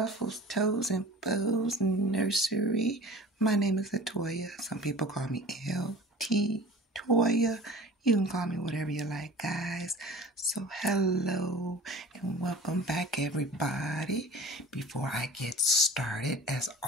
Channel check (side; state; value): both; normal; correlation 0.41